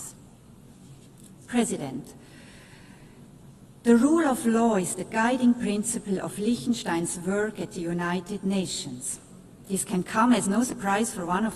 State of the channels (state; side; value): identical; both; correlation 1.00